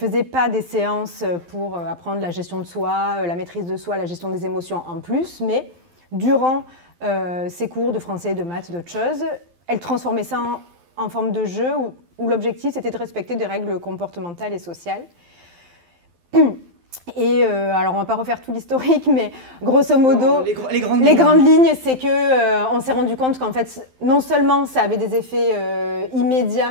pas des séances pour apprendre la gestion de soi, la maîtrise de soi, la gestion des émotions en plus, mais durant ses cours de français, de maths, d'autres choses, elle transformait ça en forme de jeu où l'objectif c'était de respecter des règles comportementales et sociales. Et alors on ne va pas refaire tout l'historique, mais grosso modo, les grandes lignes, c'est qu'on s'est rendu compte qu'en fait, non seulement ça avait des effets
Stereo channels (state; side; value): late; left; 12 ms